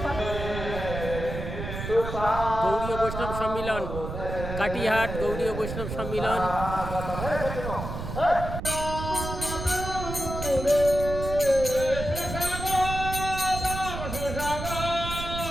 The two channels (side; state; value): right; noise; rumble, 6 dB below the sound